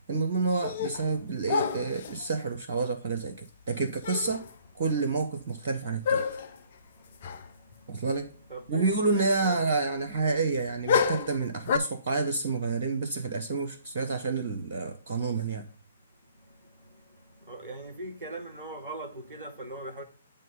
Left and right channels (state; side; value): inverted; both; correlation -0.59